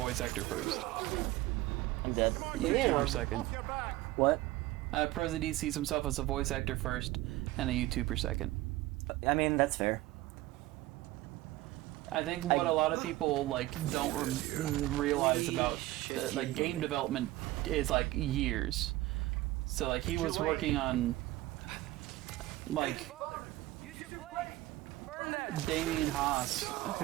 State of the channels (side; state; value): left; quieter; 17.5 dB